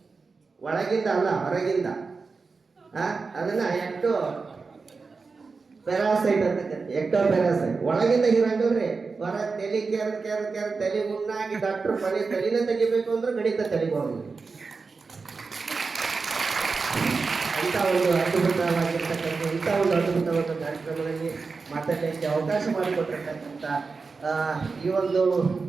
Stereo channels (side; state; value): left; quieter; 4.5 dB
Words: ಒಳಗಿಂದ ಅಲ್ಲ, ಹೊರಗಿಂದ. ಅದನ್ನ ಪ್ಯಾರಾಸೈಟ್ ಅಂತ ಎಕ್ಟೋ ಪ್ಯಾರಾಸೈಟ್. ಒಳಗಿಂದ ಹೀರಂಗಲ್ರಿ, ಹೊರ ತಲೆ ಕೆರ ತಲೆ ಮುನ್ನಾಗಿ ಡಾಕ್ಟರ್ ಮನೆ ತಲೆನ ತೆಗಿಬೇಕು ಅಂದ್ರೆ ಗಣಿತ ತಲೆಗೆ ಹೋಗಿ ಇಂಥ ಒಂದು ಅದ್ಭುತವಾಗಿರ್ತಕ್ಕಂಥ ಅದ್ಭುತವಾದ ಕಾರ್ಯಕ್ರಮದಲ್ಲಿ ಮಾತಾಡಲಿಕ್ಕೆ ಅವಕಾಶ ಮಾಡಿಕೊಟ್ಟಿರ್ತಕ್ಕಂಥ ಈ ಒಂದು